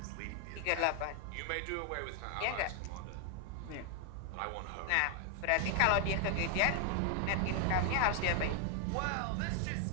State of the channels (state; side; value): different; both; correlation 0.00